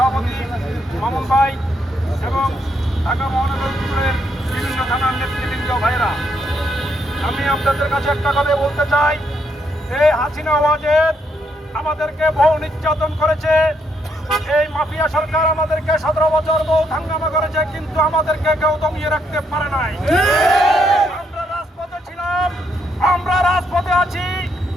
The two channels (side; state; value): both; normal; correlation 0.75